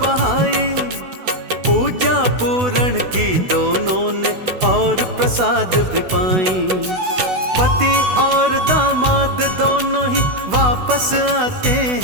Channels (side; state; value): left; late; 16 ms